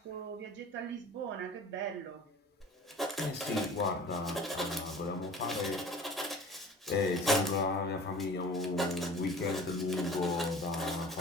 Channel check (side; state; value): both; normal; correlation 0.43